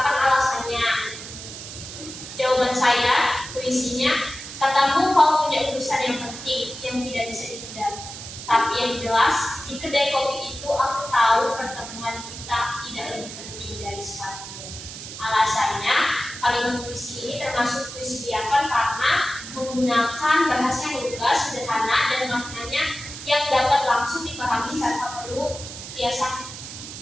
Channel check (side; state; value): right; noise; hiss, 11 dB below the sound